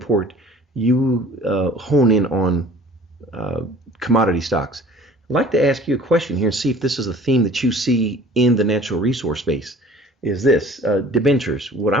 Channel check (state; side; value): normal; both; correlation 0.48